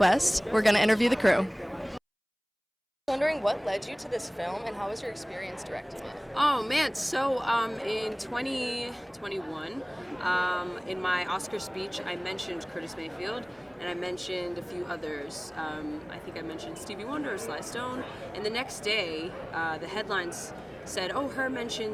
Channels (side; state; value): both; identical; correlation 1.00